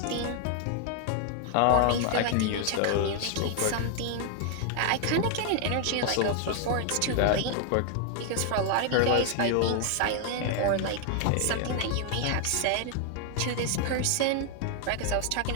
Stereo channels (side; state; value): both; different; correlation 0.00